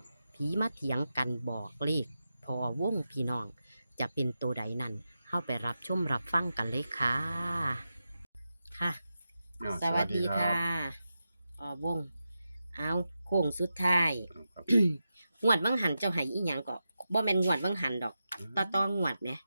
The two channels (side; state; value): both; inverted; correlation -0.90